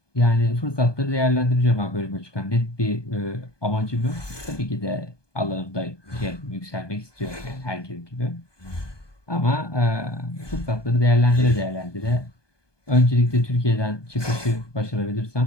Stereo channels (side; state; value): right; late; 1.2 ms